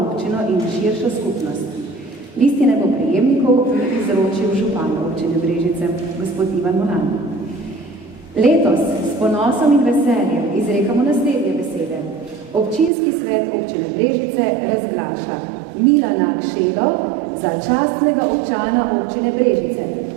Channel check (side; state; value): left; drops out; at 12.9 s